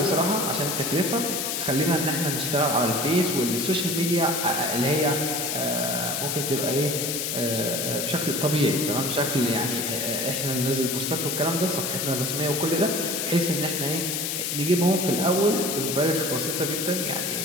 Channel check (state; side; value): noise; left; hiss, 1 dB below the sound